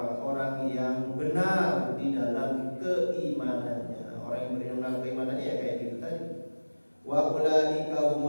yang benar di dalam keimanannya. Orang yang benar keimanannya ya kayak gitu tadi. Wa ulaika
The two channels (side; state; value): both; inverted; correlation -1.00